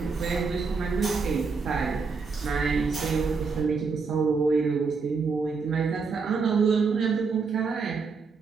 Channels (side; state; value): left; quieter; 4.8 dB